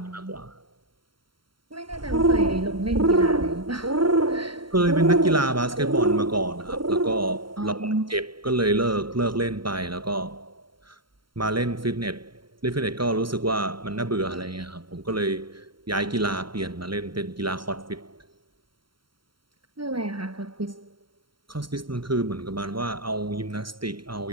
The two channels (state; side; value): late; left; 0.73 ms